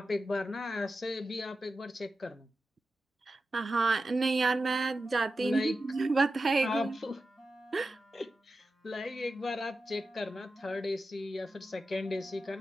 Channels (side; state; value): both; normal; correlation 0.91